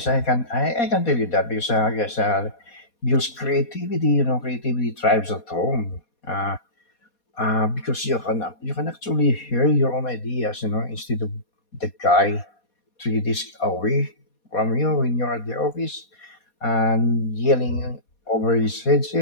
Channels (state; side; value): late; right; 4.2 ms